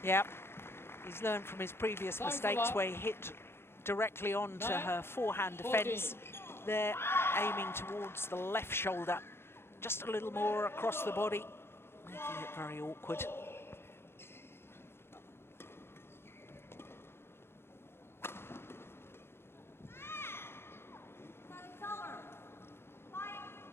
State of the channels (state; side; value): late; right; 0.12 ms